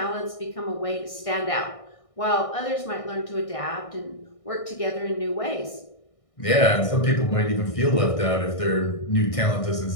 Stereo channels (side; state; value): right; late; 1.6 ms